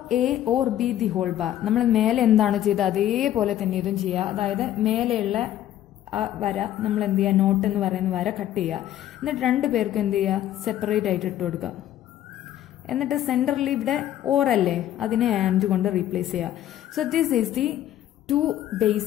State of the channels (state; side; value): quieter; right; 12.2 dB